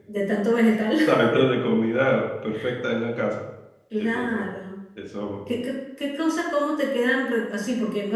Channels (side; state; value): both; identical; correlation 1.00